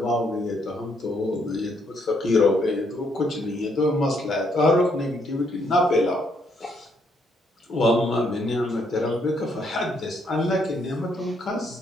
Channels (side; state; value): both; normal; correlation 0.72